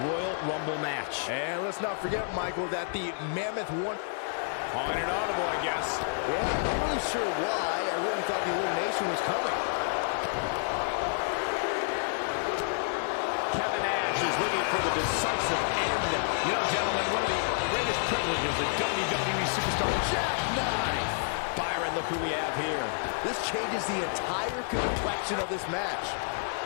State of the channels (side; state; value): right; silent; digital silence